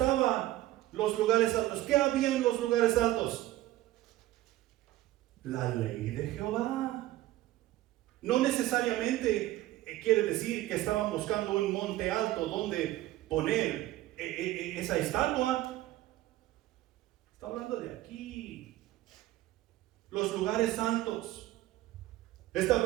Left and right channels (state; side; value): quieter; left; 15.7 dB